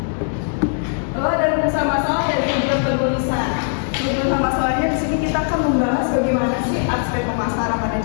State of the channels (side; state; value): right; silent; digital silence